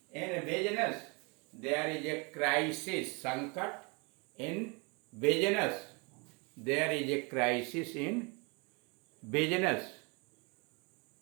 in business, there is a crisis, संकट in business, there is a crisis in business.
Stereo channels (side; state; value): left; quieter; 31.0 dB